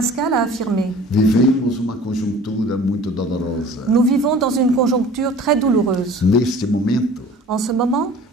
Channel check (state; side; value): normal; both; correlation 0.46